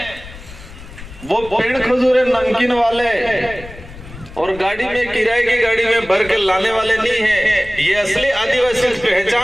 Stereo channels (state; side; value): noise; left; rumble, 16 dB below the sound